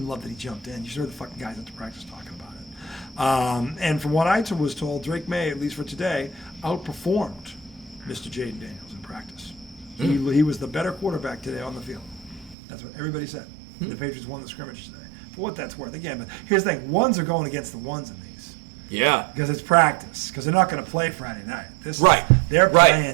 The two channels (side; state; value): left; drops out; at 12.6 s